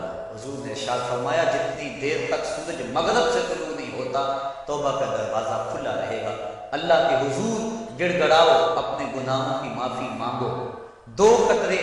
حضور نے ارشاد فرمایا جتنی دیر تک سورج مغرب سے طلوع نہیں ہوتا توبہ کا دروازہ کھلا رہے گا۔ اللہ کے حضور گڑ گڑاؤ، اپنے گناہوں کی معافی مانگو۔ 2 قطرے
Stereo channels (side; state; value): both; identical; correlation 1.00